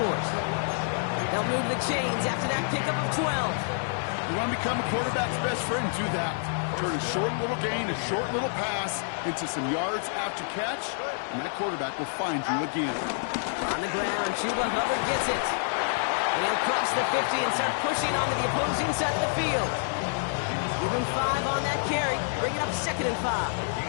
They'll move the chains after that pickup of 12. You want to become a quarterback's best friend? Do that. Turn a short little gain, a short little pass into some yards after catch, and that quarterback will find you again. On the ground, Chuba Hubbard gets it. And he'll cross the 50 and start pushing onto the opposing side of the field. Give him 5 on that carry, bring it up 2nd and 5.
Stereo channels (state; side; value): silent; right; digital silence